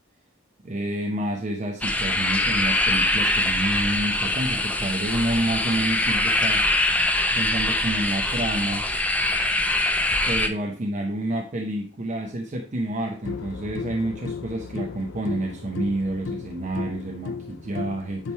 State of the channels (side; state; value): both; normal; correlation 0.45